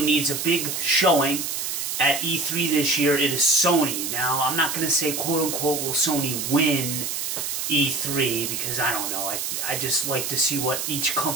needs a big showing at E3 this year, it is Sony. Now, I'm not going to say quote-unquote will Sony win E3, because I don't know. I just like to see what each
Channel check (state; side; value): noise; right; hiss, 3 dB below the sound